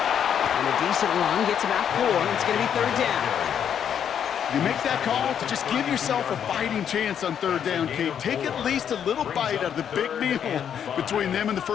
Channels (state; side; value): quieter; right; 8.6 dB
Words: And a decent run gets about 4. It's going to be 3rd down. You make that call to just give yourself a fighting chance on 3rd down, Kate. Take at least a little bite out of the big meal between them and the